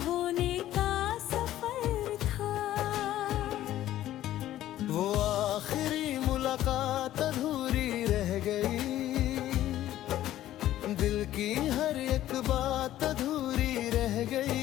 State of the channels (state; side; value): quieter; right; 13.4 dB